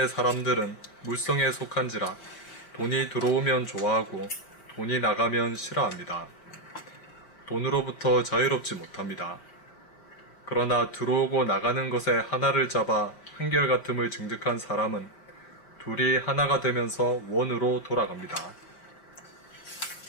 사람들은 물성에 속한지라 돈이 들어오면 좋아하고 돈이 나가면 싫어합니다. 돈으로부터 자유롭지 못합니다. 그러나 들어오고 나가는 것에 하나를 잡아 한결같음을 증득한 사람은 둘이 하나가 되면서 원으로 돌아갑니다.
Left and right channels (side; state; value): right; late; 5.4 ms